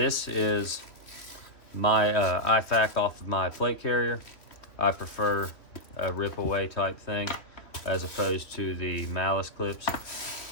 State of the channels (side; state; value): right; late; 2.8 ms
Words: is my IFAK off of my plate carrier. I prefer a rip away type thing as opposed to the malice clips.